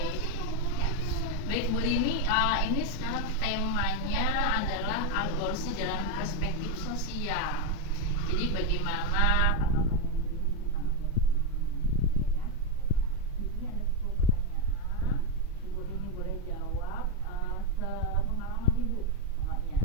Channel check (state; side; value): normal; both; correlation 0.04